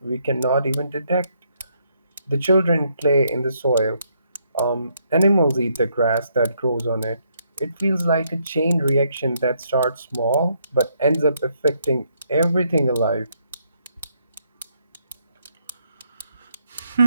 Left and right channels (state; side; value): inverted; both; correlation -0.74